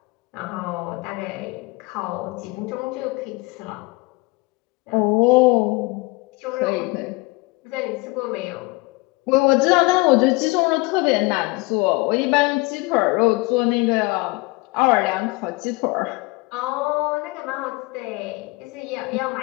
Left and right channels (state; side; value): quieter; right; 24.4 dB